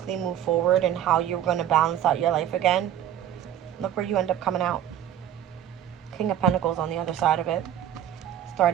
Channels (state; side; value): quieter; left; 10.7 dB